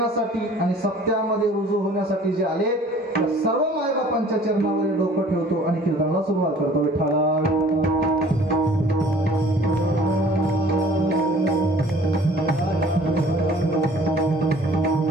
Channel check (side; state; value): both; normal; correlation 0.51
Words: आणि सत्यामध्ये रुजू होण्यासाठी जे आले त्या सर्व मायबापांच्या चरणावर डोकं ठेवतो आणि कीर्तनाला सुरुवात करतो. विठ्ठला